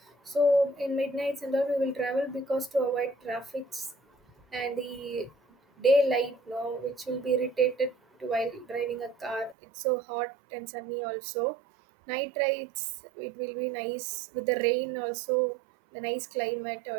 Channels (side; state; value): left; drops out; at 9.6 s